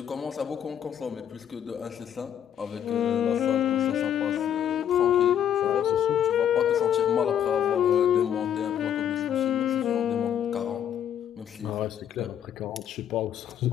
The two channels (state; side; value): quieter; right; 9.7 dB